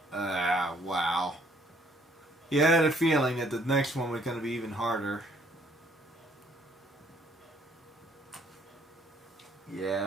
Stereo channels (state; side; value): normal; both; correlation 0.63